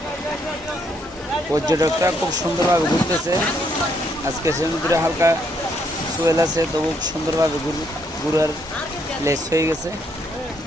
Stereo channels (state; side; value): normal; both; correlation 0.73